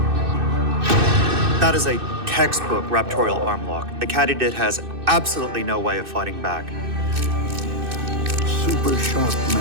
That is a textbook raptorial arm lock. The katydid has absolutely no way of fighting back. Super sharp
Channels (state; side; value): late; left; 2.6 ms